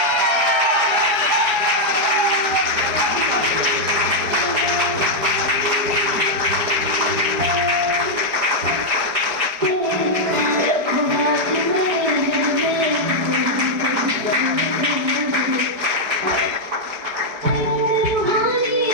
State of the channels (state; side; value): late; left; 4.8 ms